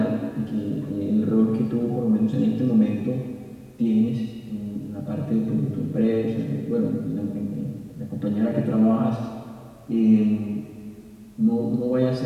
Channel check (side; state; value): both; identical; correlation 1.00